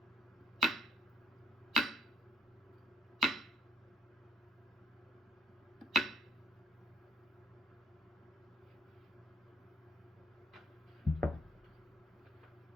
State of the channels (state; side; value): normal; both; correlation 0.67